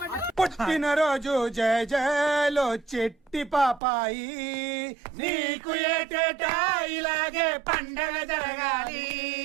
పుట్టినరోజు జయ జయలో చెట్టి పాపాయి, నీకు ఏటేటా ఇలాగే పండగ జరగాలి.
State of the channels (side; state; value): left; drops out; at 3.8 s